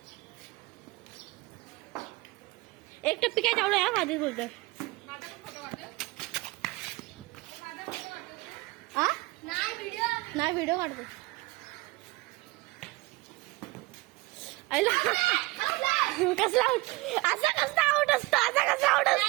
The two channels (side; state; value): left; quieter; 22.5 dB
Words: एक टप्पी काय चावलं या आधीच बोलतोय. नाही व्हिडिओ काढतो. कसला असं कसं आउट असतो. असं